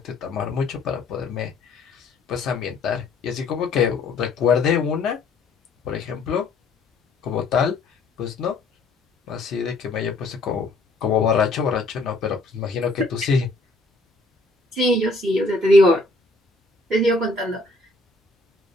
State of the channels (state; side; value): quieter; right; 3.2 dB